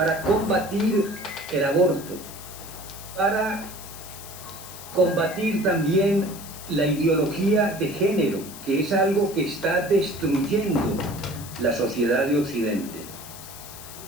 combatir el aborto, para combatir también la ideología de género, que es algo que está destruyendo la sociedad de Occidente.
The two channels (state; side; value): noise; left; hiss, 14 dB below the sound